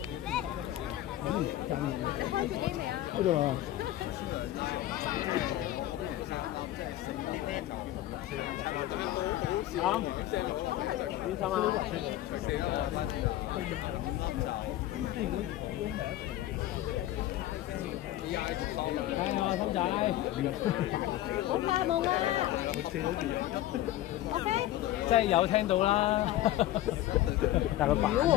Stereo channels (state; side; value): quieter; right; 14.3 dB